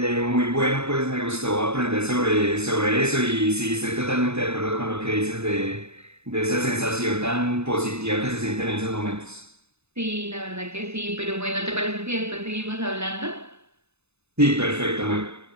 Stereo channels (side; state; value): left; late; 0.80 ms